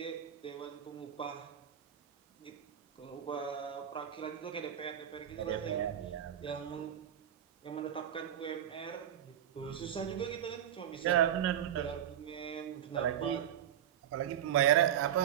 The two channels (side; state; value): left; quieter; 10.2 dB